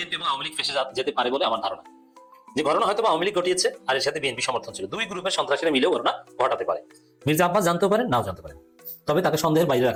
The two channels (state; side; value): identical; both; correlation 1.00